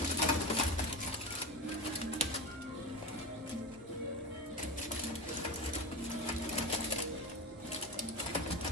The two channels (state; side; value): normal; both; correlation 0.24